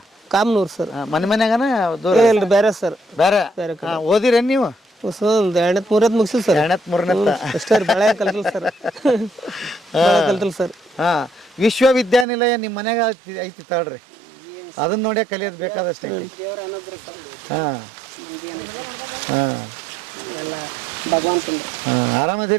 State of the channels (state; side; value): drops out; left; at 12.2 s